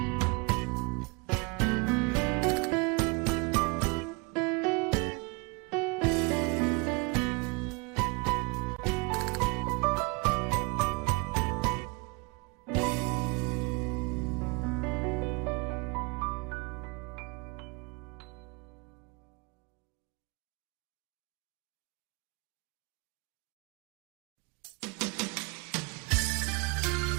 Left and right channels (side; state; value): left; quieter; 28.7 dB